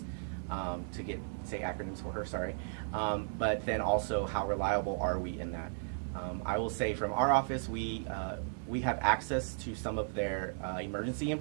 to say acronyms for her, sorry. But then also, how reliable are we in that? I will say from our office, we have access to some of their emergency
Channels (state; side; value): silent; left; digital silence